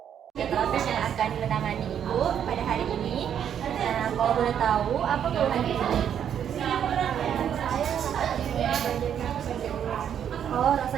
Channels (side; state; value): left; quieter; 9.0 dB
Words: Terapi yang akan menangani Ibu pada hari ini. Nah, kalau boleh tahu, apa keluhan Ibu? Oh,